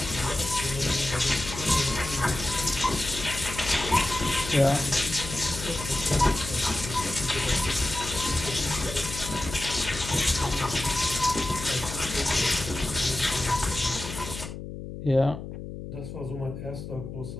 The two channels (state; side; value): noise; left; hum, 9 dB below the sound